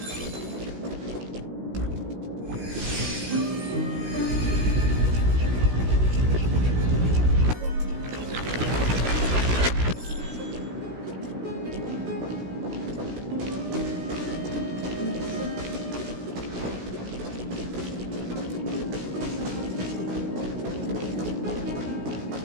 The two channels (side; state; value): left; late; 16 ms